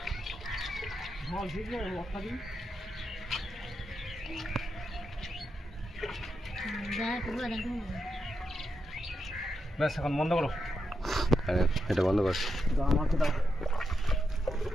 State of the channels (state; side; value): normal; both; correlation 0.85